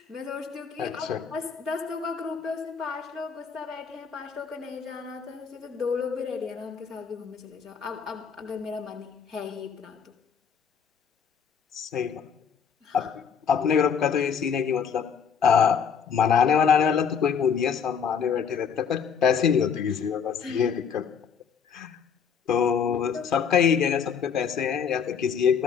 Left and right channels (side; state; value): right; quieter; 7.0 dB